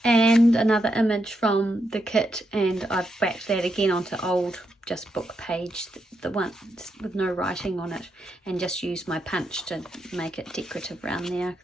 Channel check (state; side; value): normal; both; correlation 0.82